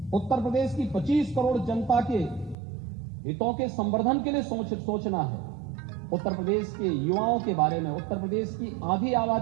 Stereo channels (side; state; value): left; drops out; at 2.6 s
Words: उत्तर प्रदेश की 25 करोड़ जनता के हितों के संवर्धन के लिए सोचना है, उत्तर प्रदेश के युवाओं के बारे में, उत्तर प्रदेश की आधी